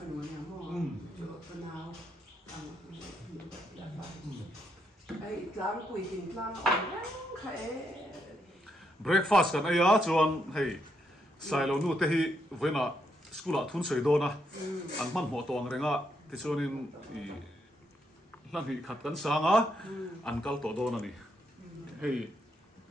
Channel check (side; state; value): both; normal; correlation 0.78